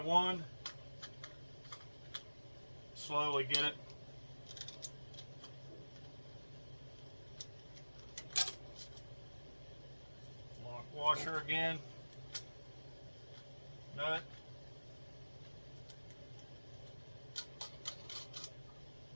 Slowly get it. Lock washer again. Nut.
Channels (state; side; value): inverted; both; correlation -1.00